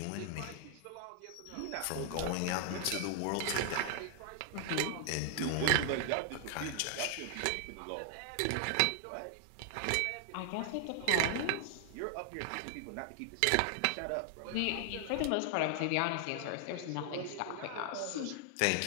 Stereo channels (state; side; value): different; both; correlation 0.00